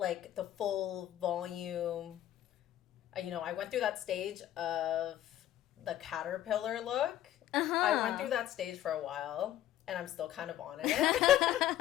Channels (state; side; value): quieter; right; 12.5 dB